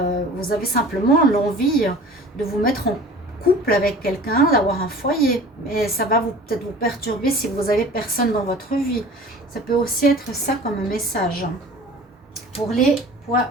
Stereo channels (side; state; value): both; normal; correlation 0.43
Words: simplement l'envie de vous mettre en couple avec quelqu'un, d'avoir un foyer. Mais ça va peut-être vous perturber si vous avez personne dans votre vie. Ça peut aussi être ça comme message pour les